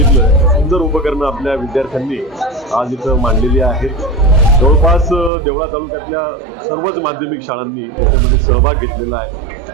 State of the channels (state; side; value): drops out; left; at 5.3 s